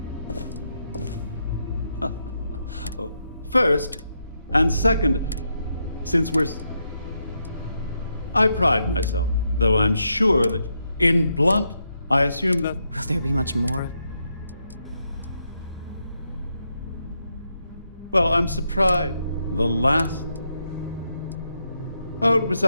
Oh, first, and second, since I pride myself, though I'm sure that in blunt, I assume that. Will there be much more? Well, I'm surprised. The last. Oh, it was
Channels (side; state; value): both; inverted; correlation -0.81